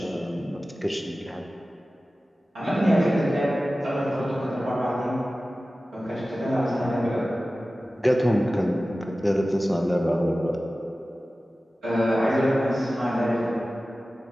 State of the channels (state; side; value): normal; both; correlation 0.96